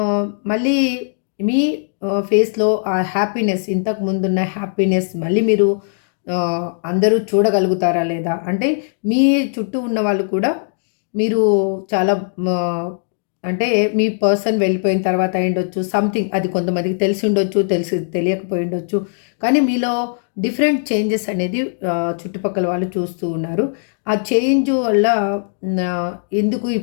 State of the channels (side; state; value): right; silent; digital silence